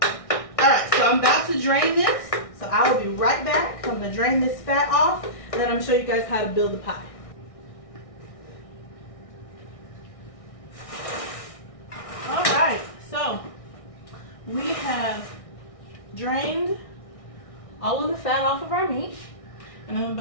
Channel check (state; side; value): late; right; 1.6 ms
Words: Alright, so I'm about to drain this. So I will be right back. I'm going to drain this fat off, and then I'm going to show you guys how to build the pie. Alright, so we have drained all of the fat off of our meat, and I'm